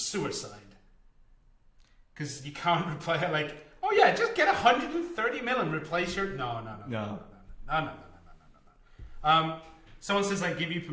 Because you can't replay it like, oh yeah, just get 130 mil and replace your... No. Someone says, I give you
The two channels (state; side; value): identical; both; correlation 1.00